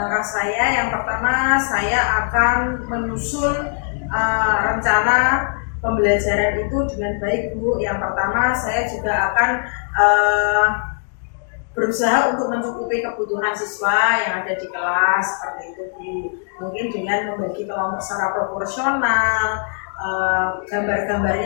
saya yang pertama, saya akan menyusun rencana pembelajaran itu dengan baik Bu. Yang pertama saya juga akan berusaha untuk mencukupi kebutuhan siswa yang ada di kelas seperti itu Bu. Mungkin dengan membagi kelompok secara proporsional,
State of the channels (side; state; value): right; silent; digital silence